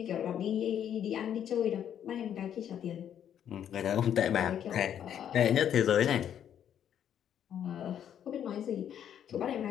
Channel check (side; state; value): right; quieter; 9.5 dB